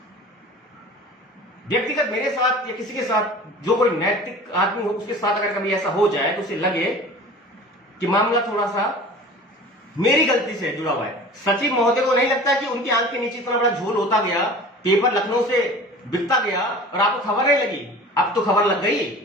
व्यक्तिगत मेरे साथ या किसी के साथ जो कोई नैतिक आदमी हो, उसके साथ अगर कभी ऐसा हो जाए तो उसे लगे कि मामला थोड़ा सा मेरी गलती से जुड़ा हुआ है। सचिव महोदय को नहीं लगता कि उनकी आंख के नीचे इतना बड़ा झोल होता गया, पेपर लखनऊ से बिकता गया और आपको खबर नहीं लगी। अब तो खबर लग गई,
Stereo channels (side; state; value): both; normal; correlation 0.41